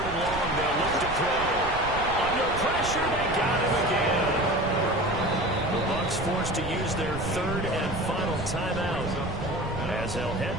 and long, they'll look to throw. Under pressure, they got him again. The Bucs forced to use their 3rd and final timeout, as they'll head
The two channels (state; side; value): noise; right; rumble, 9 dB below the sound